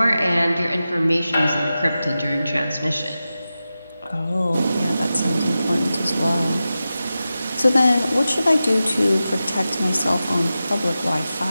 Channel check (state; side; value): inverted; both; correlation -0.93